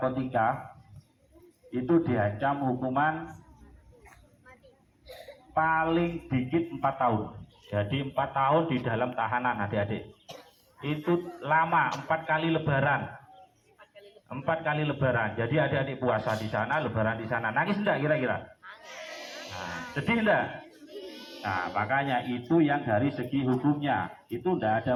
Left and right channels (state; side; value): identical; both; correlation 1.00